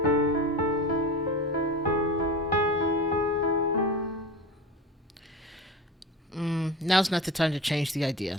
Now's not the time to change the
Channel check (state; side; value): normal; both; correlation 0.30